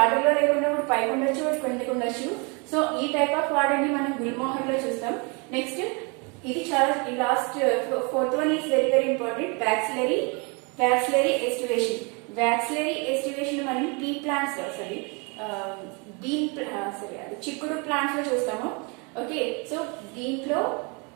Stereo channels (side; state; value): left; quieter; 31.9 dB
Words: ఆర్డర్ లో లేకుండా ఒకటి పైకి ఉండొచ్చు, ఒకటి కిందకి ఉండొచ్చు. సో ఈ టైప్ ఆఫ్ ఆర్డర్ ని మనం గుల్మోహర్ లో చూస్తాం. నెక్స్ట్ ఇది చాలా last fourth one is very very important, vexillary aestivation. Vexillary aestivation మనం పీ ప్లాంట్స్ అది చిక్కుడు ప్లాంట్స్ లో చూస్తాము. ఓకే, సో దీంట్లో